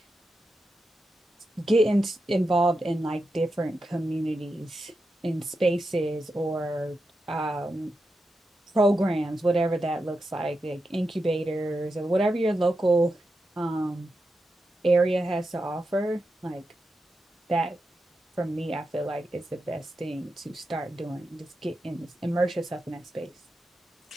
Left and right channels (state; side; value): normal; both; correlation 0.88